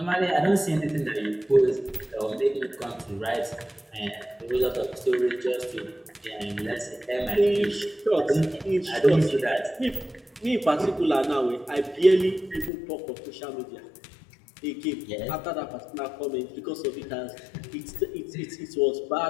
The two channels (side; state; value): right; drops out; at 12.7 s